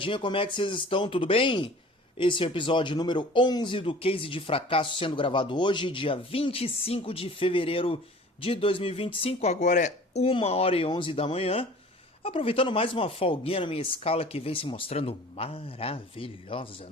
como é que vocês estão? Tudo bem? Esse é o episódio número 11 do Case de Fracasso, sendo gravado hoje, dia 25 de fevereiro de 2025. Agora é 1h11 da manhã. Aproveitando mais uma folguinha na minha escala que vem se mostrando maravilhosa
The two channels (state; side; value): normal; both; correlation 0.45